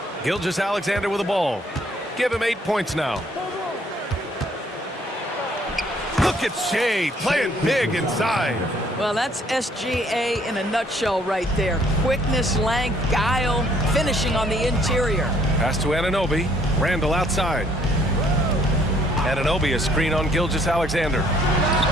Gilgeous-Alexander with the ball. Give him 8 points now. Look at Shai playing big inside. Well, that's SGA in a nutshell right there. Quickness, length, guile, finishing on the interior. Pass to Anunoby. Randall outside. Anunoby a screen on Gilgeous-Alexander.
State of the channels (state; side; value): normal; both; correlation 0.64